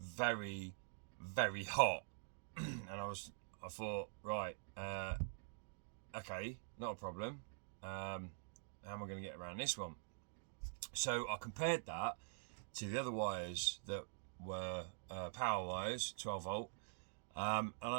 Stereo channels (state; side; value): silent; left; digital silence